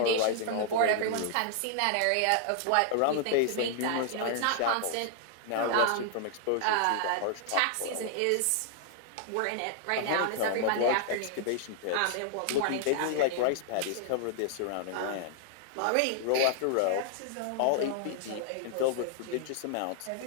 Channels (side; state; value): both; different; correlation -0.01